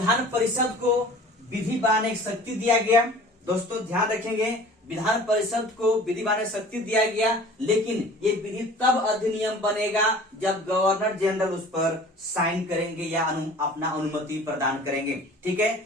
परिषद को विधि बनाने की शक्ति दिया गया। दोस्तों, ध्यान रखेंगे, विधान परिषद को विधि बनाने की शक्ति दिया गया, लेकिन ये विधि तब अधिनियम बनेगा जब गवर्नर जनरल उस पर साइन करेंगे या अपना अनुमति प्रदान करेंगे। ठीक है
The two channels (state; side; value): normal; both; correlation 0.45